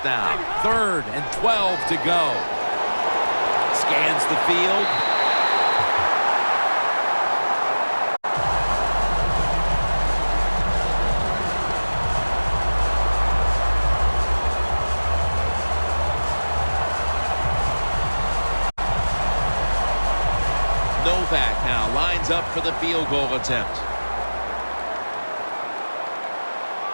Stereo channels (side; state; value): both; inverted; correlation -1.00